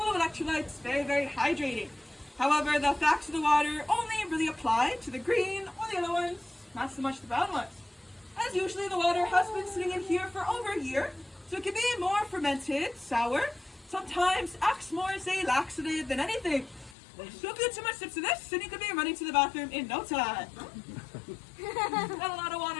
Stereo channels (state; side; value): drops out; right; at 16.9 s